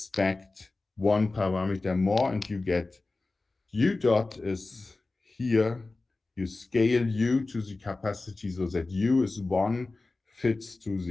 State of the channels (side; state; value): right; quieter; 3.4 dB